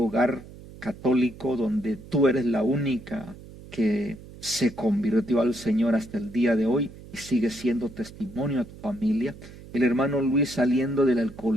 católico donde tú eres la única que se convirtió al Señor hasta el día de hoy y sigue siendo testimonio a tu familia. El hermano Luis, saliendo del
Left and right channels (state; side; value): noise; right; hum, 17 dB below the sound